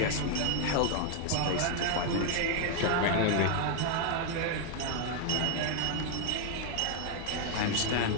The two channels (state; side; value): different; both; correlation 0.00